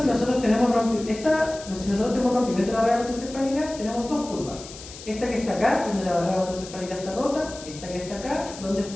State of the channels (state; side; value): noise; left; hiss, 15 dB below the sound